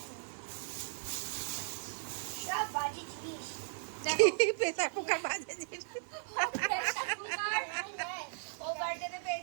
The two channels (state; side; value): silent; left; digital silence